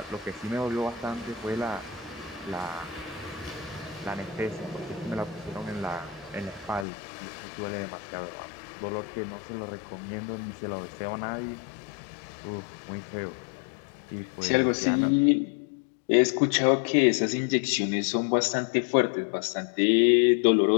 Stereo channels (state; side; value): drops out; right; at 6.9 s